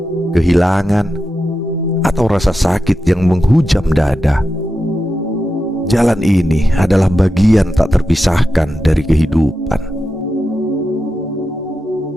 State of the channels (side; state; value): both; normal; correlation 0.90